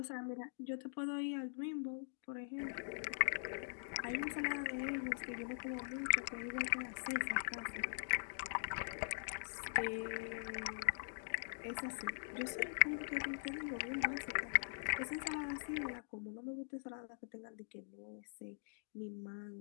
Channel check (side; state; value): right; silent; digital silence